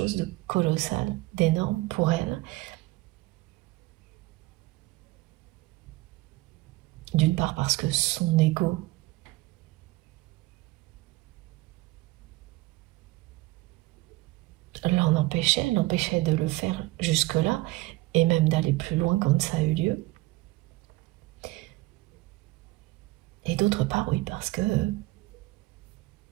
de colossal, d'énorme pour elle. D'une part parce que son ego l'empêchait de le faire jusque-là, et même d'aller plus loin quand ça a eu lieu. Et d'autre part, oui, parce que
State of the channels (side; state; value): left; quieter; 20.1 dB